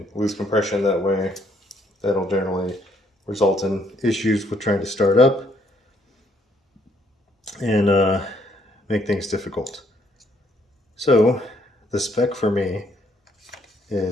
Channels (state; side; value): normal; both; correlation 0.69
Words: lose compression that way. That'll generally result in issues with trying to start up and make things difficult. So the spec for me